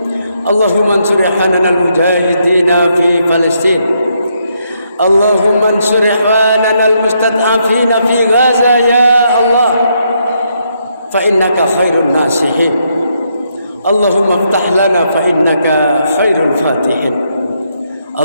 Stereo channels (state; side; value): inverted; both; correlation -0.76